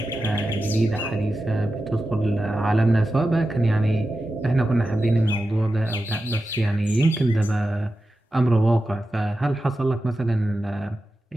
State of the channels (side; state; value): both; normal; correlation 0.92